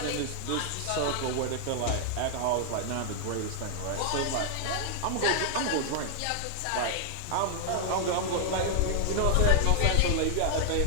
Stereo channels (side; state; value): both; different; correlation 0.00